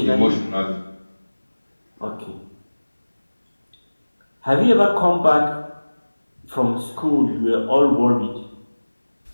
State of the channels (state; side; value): inverted; both; correlation -1.00